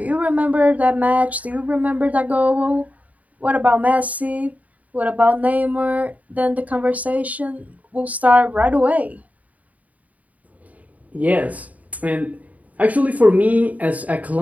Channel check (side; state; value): left; late; 0.072 ms